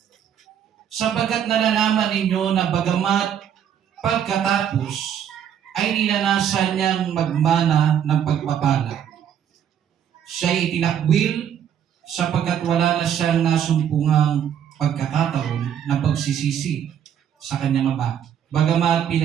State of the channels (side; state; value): left; quieter; 9.2 dB